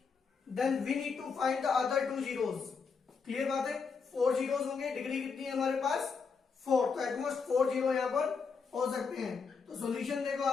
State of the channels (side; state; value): right; quieter; 5.4 dB